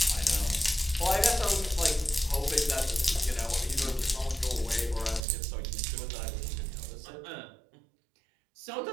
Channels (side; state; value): left; drops out; at 5.2 s